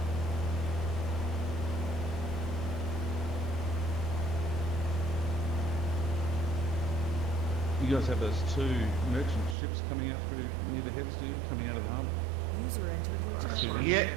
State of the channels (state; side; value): drops out; left; at 9.6 s